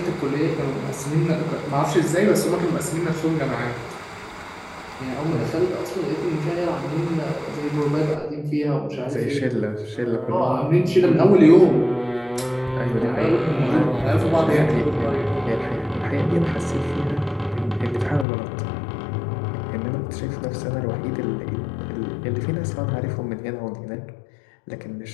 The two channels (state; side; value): drops out; right; at 18.2 s